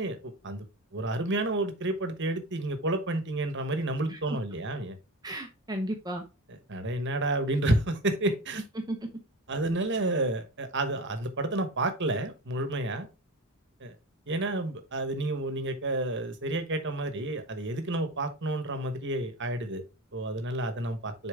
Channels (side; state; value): both; normal; correlation 0.29